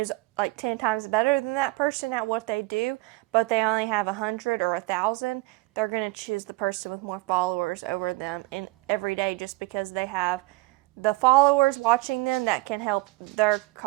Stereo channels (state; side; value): quieter; left; 21.6 dB